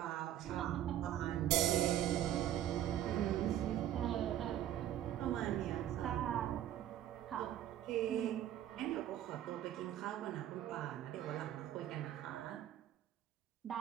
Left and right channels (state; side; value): quieter; left; 11.7 dB